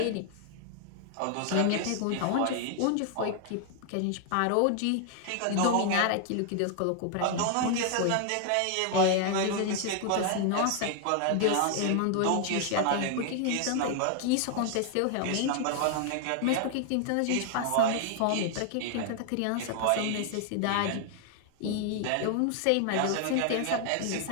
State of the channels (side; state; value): both; different; correlation 0.00